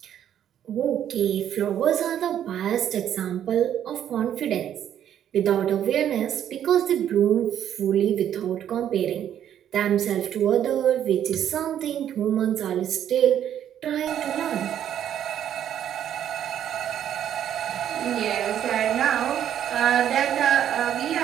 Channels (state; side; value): quieter; left; 10.2 dB